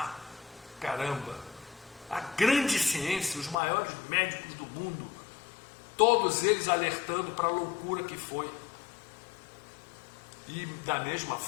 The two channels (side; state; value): right; drops out; at 3.6 s